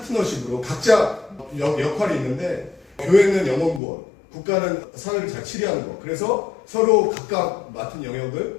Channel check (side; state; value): right; drops out; at 3.8 s